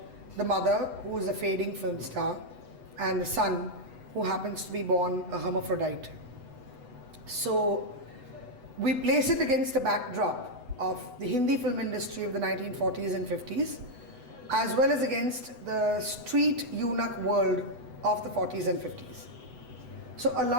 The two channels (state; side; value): late; left; 8.0 ms